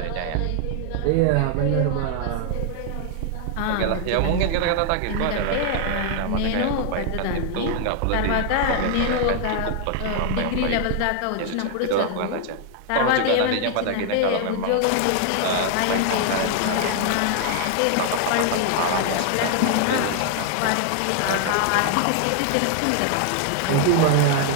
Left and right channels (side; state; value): both; different; correlation 0.00